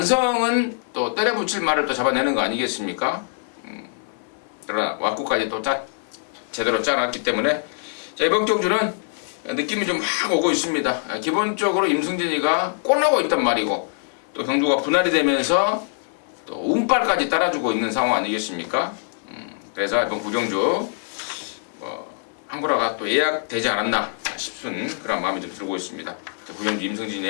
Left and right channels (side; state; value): right; silent; 61 dB below the other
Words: 또 때려 붙일 말을 또 잡아내는 거 아니겠습니까? 그러나 왁구까지 또 제대로 짜놨기 때문에 자, 이번 경주는 느낌이 좀 확 오고 있습니다. 기본적으로 임승진이가 꼬나고 있단 말이고 또 경주가 분할이 되면서 또 운빨까지 따라주고 있는 상황 아니겠습니까? 그래서 이번 구경주 한구라가 또 예약되지 않았나 싶은 그런 마음이 좀 들고 있습니다. 구경주